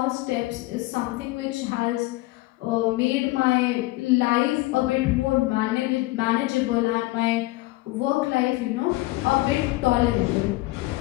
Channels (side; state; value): right; quieter; 20.2 dB